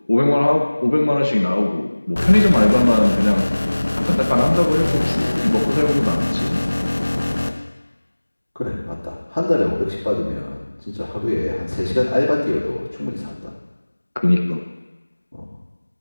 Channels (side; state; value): both; inverted; correlation -1.00